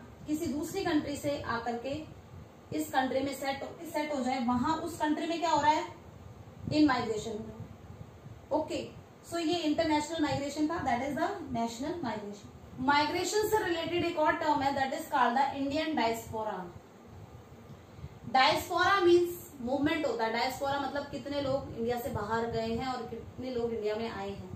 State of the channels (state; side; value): identical; both; correlation 1.00